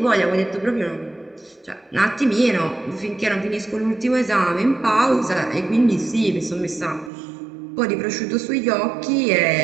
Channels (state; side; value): drops out; left; at 7.1 s